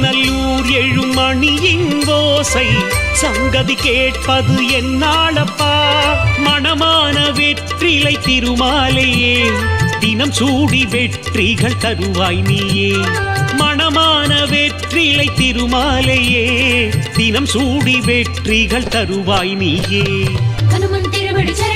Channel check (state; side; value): identical; both; correlation 1.00